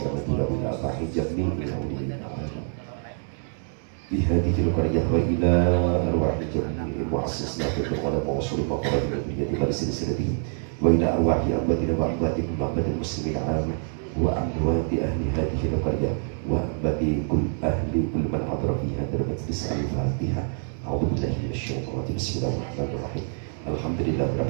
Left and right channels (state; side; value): silent; left; 55 dB below the other